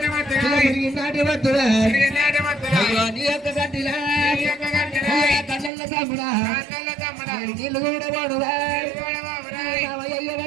నాటి వద్దురా అయ్యో నీ యొక్క గడ్డిలా కన్నెల్ల తమ్ముడా నీళ్ళు కూడా వాడురా అయ్య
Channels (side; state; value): left; drops out; at 5.7 s